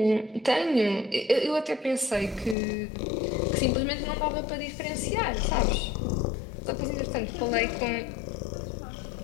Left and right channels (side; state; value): right; drops out; at 2.6 s